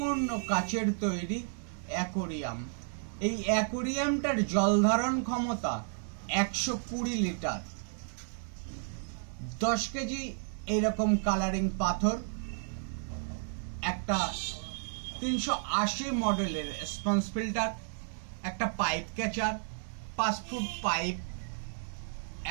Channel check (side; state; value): left; silent; digital silence